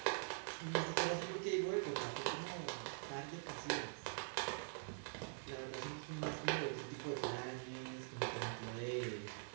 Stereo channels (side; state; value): left; silent; digital silence